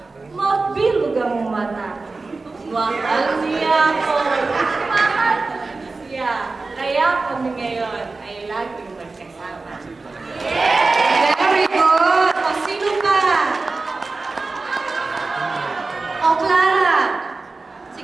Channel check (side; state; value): left; quieter; 3.7 dB